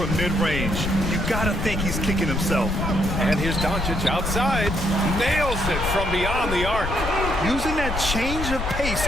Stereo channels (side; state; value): left; noise; rumble, 4 dB below the sound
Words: mid-range. You gotta think he's kicking himself. And here's Doncic outside. Nails it from beyond the arc. Using that change of pace